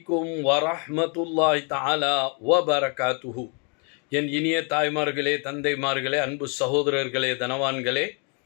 வரஹ்மத்துல்லாஹி தஆலா வபரகாத்துஹு. என் இனிய தாய்மார்களே, தந்தைமார்களே, அன்பு சகோதரர்களே, தனவான்களே,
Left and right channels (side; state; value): right; quieter; 36.4 dB